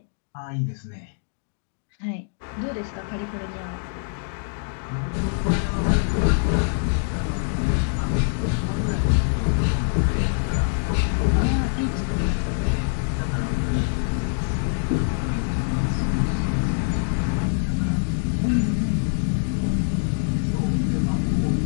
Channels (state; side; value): silent; right; digital silence